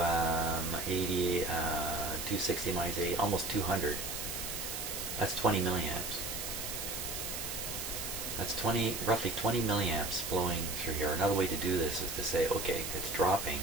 80, 260 minus 80, almost 200. That's 20 milliamps. That's roughly 20 milliamps flowing through here. Another way to do this is to say, okay, it's dropping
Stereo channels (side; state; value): right; noise; hiss, 5 dB below the sound